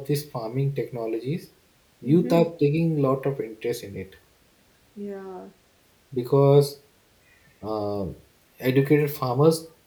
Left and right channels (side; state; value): both; identical; correlation 1.00